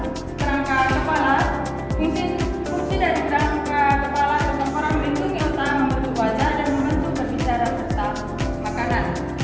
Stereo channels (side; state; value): both; identical; correlation 1.00